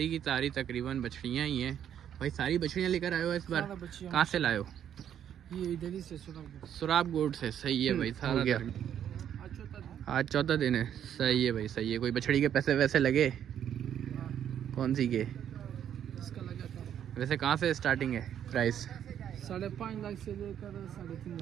की सारी तकरीबन बछड़ियाँ ही हैं भाई। सारी बछड़ियाँ लेकर आए हो इस बार? कहाँ से लाए हो? ये इधर ही से सुराब गोड से। सही है भाई। सारा गया आज चौथा दिन है। सही है भाई सही है। कोई बछड़ी के पैसे वैसे लगे? कौन सी के? इसका लगा था। वैसे कहाँ से स्टार्टिंग है प्राइस? 5.5 लाख से लेकर 3.5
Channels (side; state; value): left; quieter; 9.6 dB